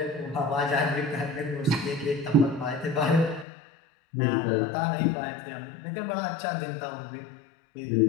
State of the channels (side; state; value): right; drops out; at 3.5 s